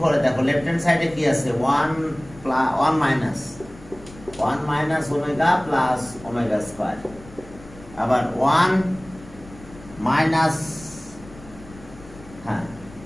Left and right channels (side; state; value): left; noise; rumble, 20 dB below the sound